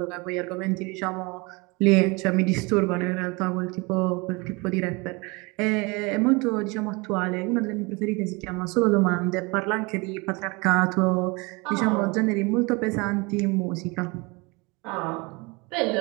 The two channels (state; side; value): quieter; left; 26.9 dB